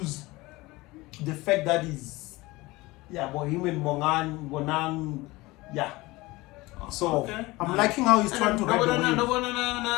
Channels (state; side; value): quieter; right; 21.1 dB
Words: the fact that he's him and Bonang. Yeah. So Okay. I'm liking how he's trying to ride the wave.